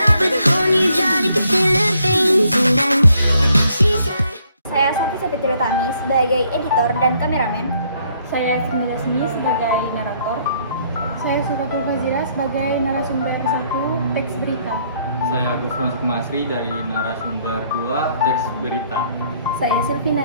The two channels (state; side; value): inverted; both; correlation -0.68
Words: Saya Safi Sapitri Tami sebagai editor dan kameramen. Saya Sindela Sini sebagai narator. Saya Suratul Fazira sebagai narasumber 1 teks berita. Saya Gufron Sukmasri dari narasumber 2 teks berita. Saya Silvi